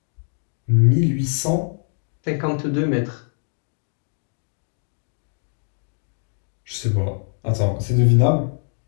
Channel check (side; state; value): right; silent; 57 dB below the other